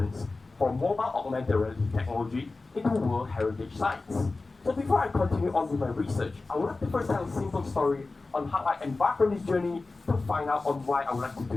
for mobile augmented reality technology into World Heritage Sites. So before I continue on with my research, I would like to first tell a simple story on how I embarked on this journey to find out on why I would like to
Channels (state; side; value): quieter; right; 3.5 dB